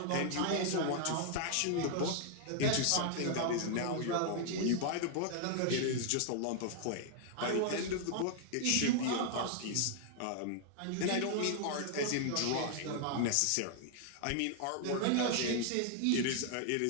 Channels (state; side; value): different; both; correlation 0.00